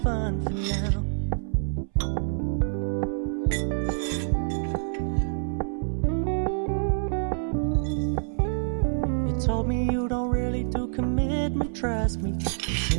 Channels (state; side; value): silent; left; 60 dB below the other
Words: for now. You told me you don't really do commitment, trust me,